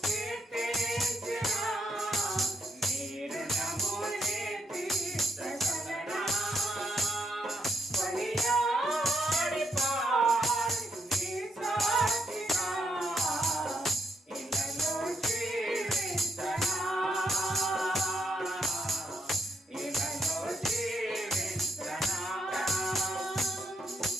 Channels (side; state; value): both; normal; correlation 0.79